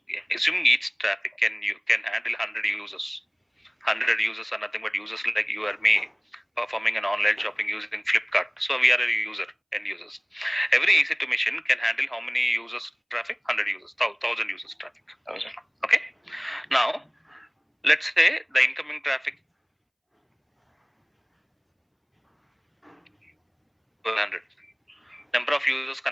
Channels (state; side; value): identical; both; correlation 1.00